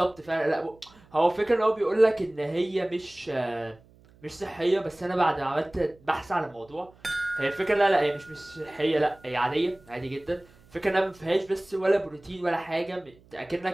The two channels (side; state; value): right; noise; hum, 28 dB below the sound